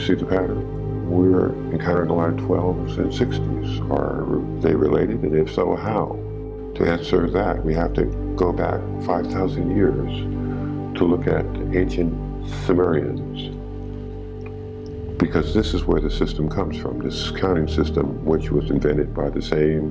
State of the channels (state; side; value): identical; both; correlation 1.00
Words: the pattern? We're encountering a lot of 12s and 60s. Are they related? And if so, how? To answer that, we have to go back 5,000 years to look at ancient Sumerians, because this is where the system comes from, this counting system, which was invented by the